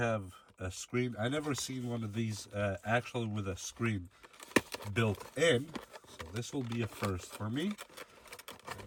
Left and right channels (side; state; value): both; identical; correlation 1.00